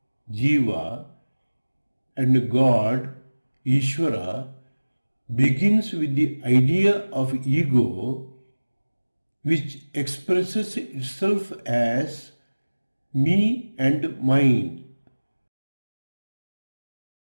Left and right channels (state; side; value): inverted; both; correlation -1.00